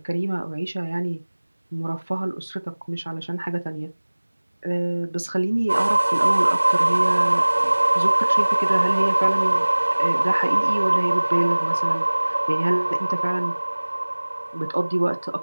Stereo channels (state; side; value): inverted; both; correlation -1.00